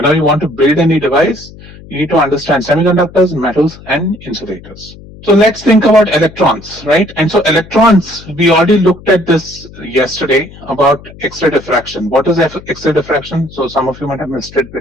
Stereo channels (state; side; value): noise; left; hum, 19 dB below the sound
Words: you want to build any device, you need to understand semiconductors, metals, and insulators. So let's think about electrons, right? And so electrons, we already looked at this yesterday about X-ray diffraction. What is X-ray diffraction? So some of you might have missed it